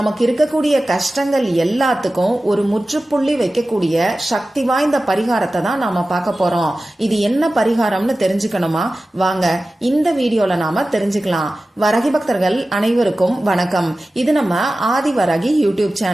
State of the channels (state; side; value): normal; both; correlation 0.95